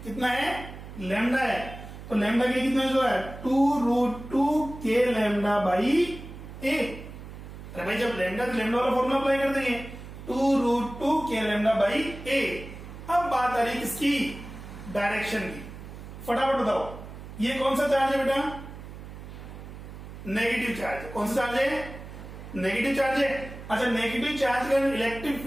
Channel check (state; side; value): noise; right; hum, 13 dB below the sound